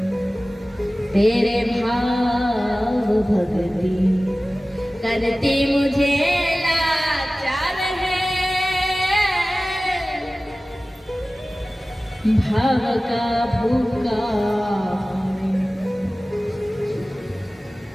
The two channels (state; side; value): normal; both; correlation 0.97